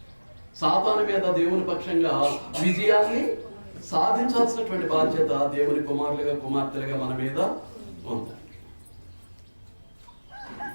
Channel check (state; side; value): inverted; both; correlation -1.00